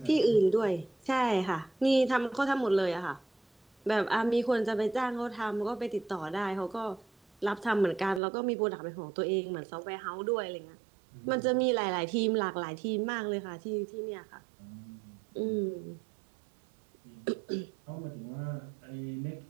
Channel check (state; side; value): drops out; left; at 8.2 s